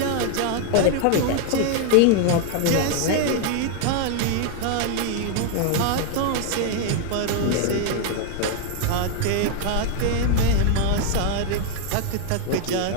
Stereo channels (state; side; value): different; both; correlation 0.00